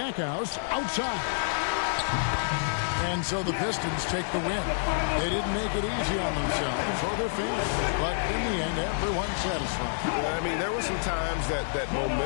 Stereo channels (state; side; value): silent; right; 59 dB below the other